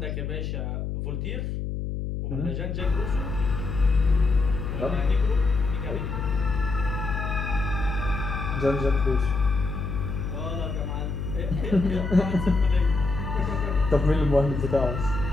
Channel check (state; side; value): noise; left; hum, 3 dB below the sound